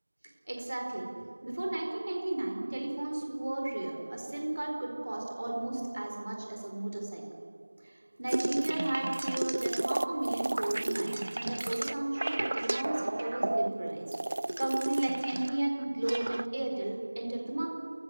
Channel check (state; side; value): inverted; both; correlation -1.00